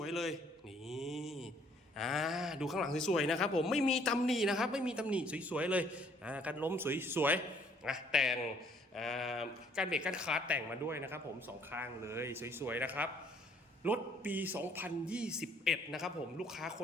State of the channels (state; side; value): normal; both; correlation 0.62